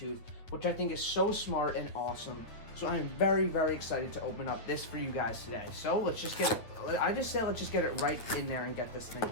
which I think is so smart and awesome. So I am very, very excited to open up this for you guys today. So let's just get it, let's just get it right in there and get this thing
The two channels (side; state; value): right; late; 8.9 ms